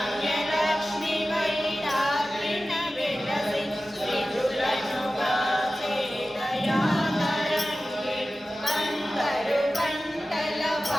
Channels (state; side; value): normal; both; correlation 0.95